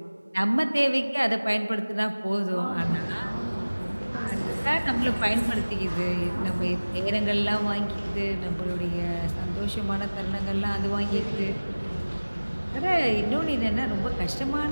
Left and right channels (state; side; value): inverted; both; correlation -1.00